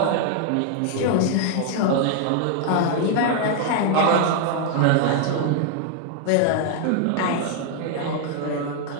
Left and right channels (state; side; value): different; both; correlation 0.00